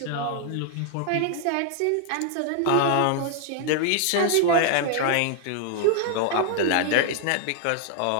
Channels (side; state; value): both; different; correlation 0.00